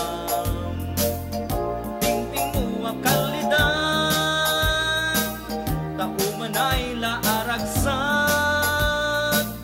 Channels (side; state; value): both; identical; correlation 1.00